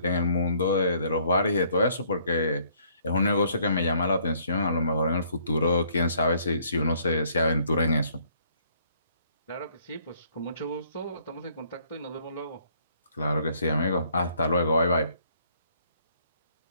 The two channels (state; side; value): inverted; both; correlation -0.64